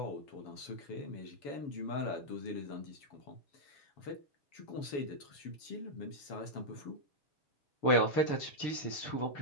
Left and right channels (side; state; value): right; late; 6.6 ms